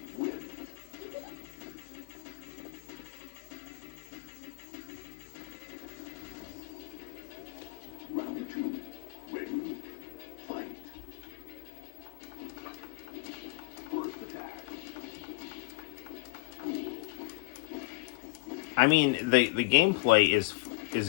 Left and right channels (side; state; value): right; quieter; 29.2 dB